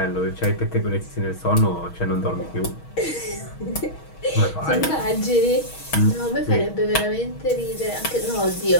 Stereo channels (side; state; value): right; late; 6.3 ms